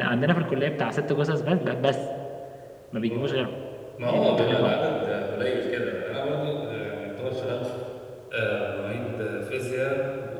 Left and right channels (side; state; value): both; identical; correlation 1.00